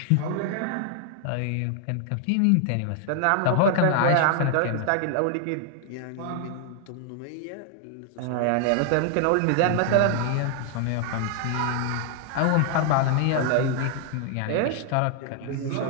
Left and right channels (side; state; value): both; different; correlation 0.00